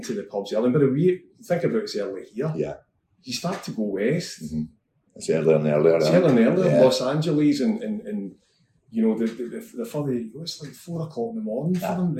to the pubs early. But we think about it's early here. Yeah. You start to go west. Mm-hmm. It's earlier and earlier. It's earlier and earlier. Yeah. Los Angeles and you know, the further you go, it's like 4 o'clock in the morning for them,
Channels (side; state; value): both; identical; correlation 1.00